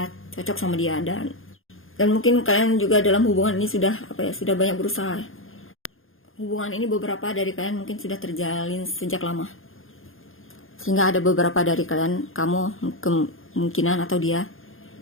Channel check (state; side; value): late; right; 0.60 ms